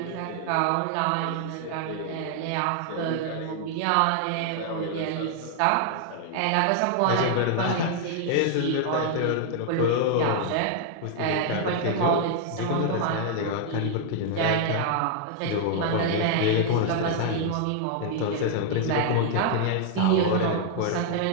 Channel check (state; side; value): different; both; correlation 0.00